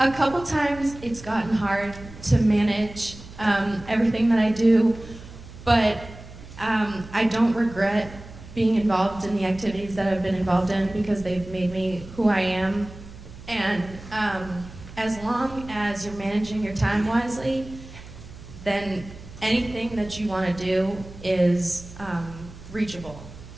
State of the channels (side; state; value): right; noise; hum, 16 dB below the sound